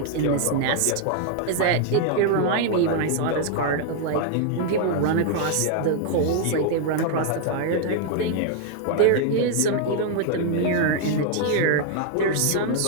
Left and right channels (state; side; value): different; both; correlation 0.00